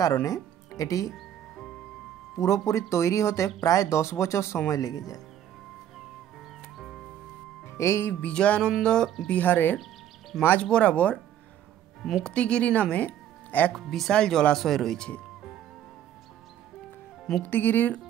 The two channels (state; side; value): quieter; left; 10.7 dB